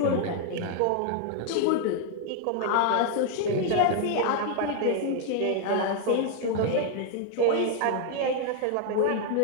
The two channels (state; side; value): different; both; correlation 0.00